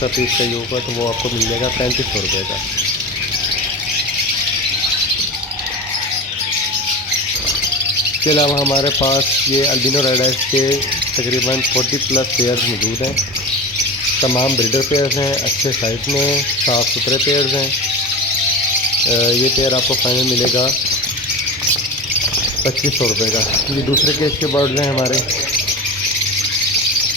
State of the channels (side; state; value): both; normal; correlation 0.27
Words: पीस चाहिए होगा तो वो आपको मिल जाएगा 3500 रुपये का। इसके अलावा हमारे पास ये अल्बिनो रेड आइज के तकरीबन 40+ पेयर्स मौजूद हैं। तमाम ब्रीडर पेयर्स हैं, अच्छे साइज़ में, साफ़ सुथरे पेयर्स हैं। ये पेयर आपको फाइनल मिलेगा 2500 रुपये का। ये दूसरे केज के बर्ड्स हैं हमारे,